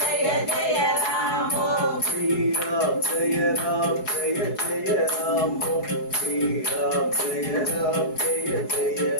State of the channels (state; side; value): late; right; 4.7 ms